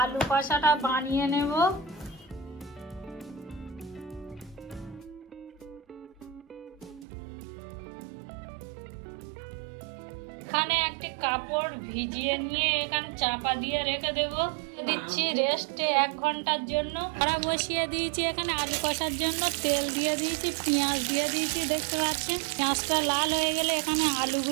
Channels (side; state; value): left; drops out; at 7.1 s